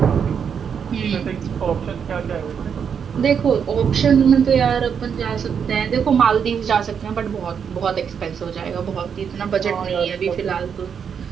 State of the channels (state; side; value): quieter; left; 7.2 dB